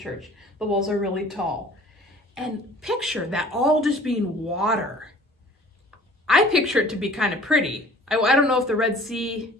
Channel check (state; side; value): normal; both; correlation 0.49